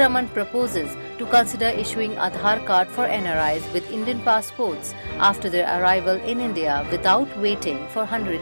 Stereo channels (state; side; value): inverted; both; correlation -1.00